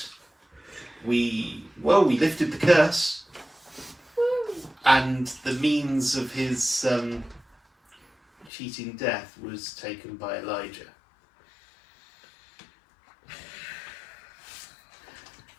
We lifted the curse, and the means of his cheating death was taken by Elijah.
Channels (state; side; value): drops out; right; at 8.5 s